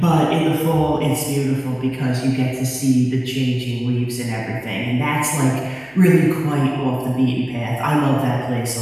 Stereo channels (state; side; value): noise; right; hum, 30 dB below the sound